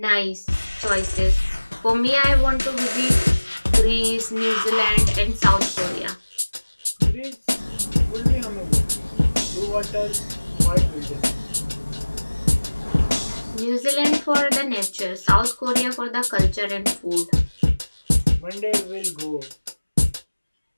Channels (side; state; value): both; inverted; correlation -1.00